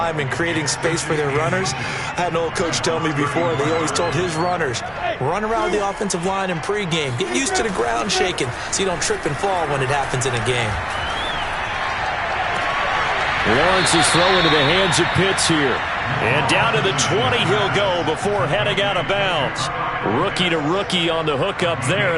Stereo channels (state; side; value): identical; both; correlation 1.00